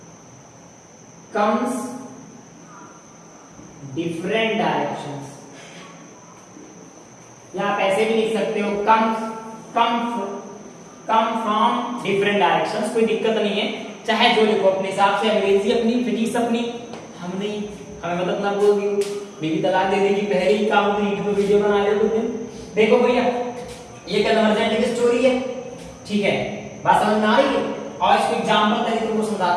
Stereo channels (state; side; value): identical; both; correlation 1.00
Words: comes different directions, या आप ऐसे भी लिख सकते हो come from different directions, कोई दिक्कत नहीं है, चाहे जो लिखो अपने हिसाब से, अंग्रेजी अपनी, फिजिक्स अपनी, हम नहीं, हमें मत अपना बोल दियो, बीवी तलाक दे देगी पहले ही काम में यूट्यूब वीडियो बना ले कुछ दिन। देखो भैया ये कन्वर्जेंट की स्टोरी है, ठीक है, बात समझ में आ रही है। और इसको एग्जांपल तरीके तुमको